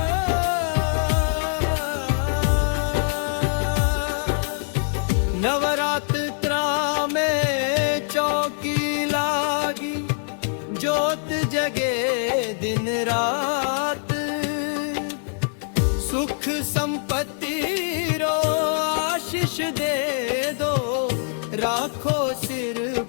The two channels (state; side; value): silent; right; 63 dB below the other